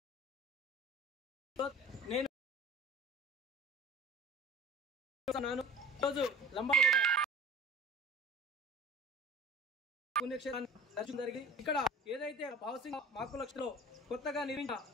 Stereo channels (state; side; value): normal; both; correlation 0.40